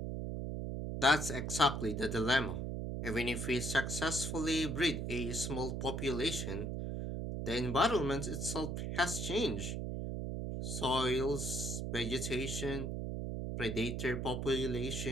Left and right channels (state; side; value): noise; right; hum, 3 dB below the sound